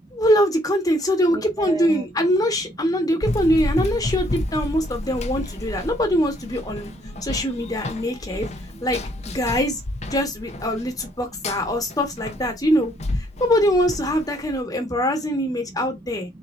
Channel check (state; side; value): normal; both; correlation 0.66